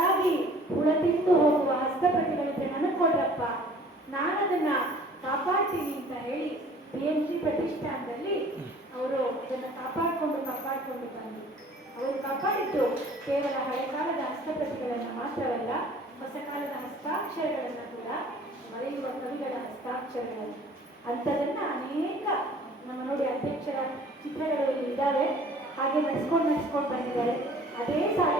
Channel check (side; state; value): both; normal; correlation 0.51